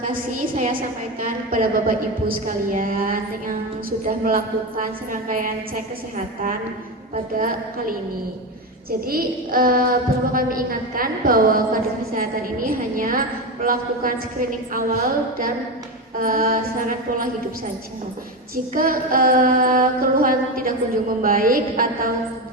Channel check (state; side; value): normal; both; correlation 0.17